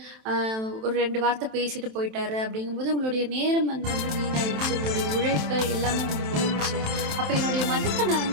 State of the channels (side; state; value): left; late; 27 ms